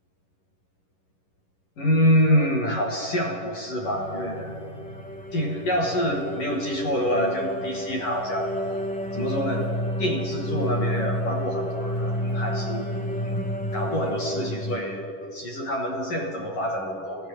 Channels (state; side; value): late; right; 11 ms